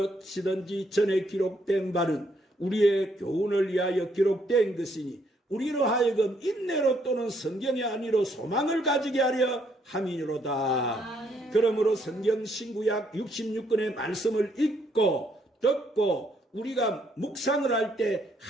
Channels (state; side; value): normal; both; correlation 0.71